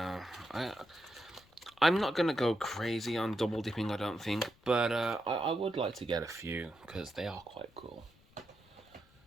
I'm not going to go crazy on double dipping, I don't think, but I would like to get a few, because they are quite cool.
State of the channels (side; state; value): left; noise; rumble, 29 dB below the sound